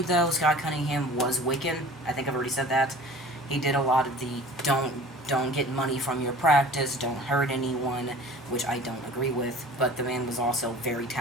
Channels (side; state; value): both; normal; correlation 0.44